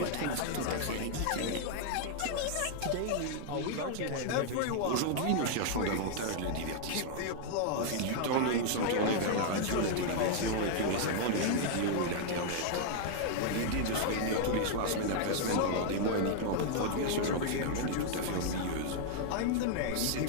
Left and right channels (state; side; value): different; both; correlation 0.00